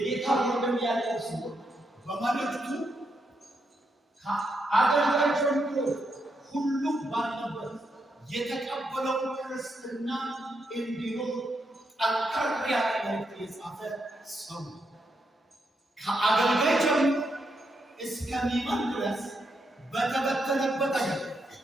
ወንድም ያዕቆብ ሲሆን በመልእክቱ ከአገልጋይ ጀምሮ ሁሉም ባለበት የተቀበለው ክርስትና እንዲኖር ጠንከር ያለ መልእክት የጻፈ ሰው ከአገልጋይ ጀምሮ እስከሚመን ድረስ በተበተነበት አገር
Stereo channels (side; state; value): both; normal; correlation 0.81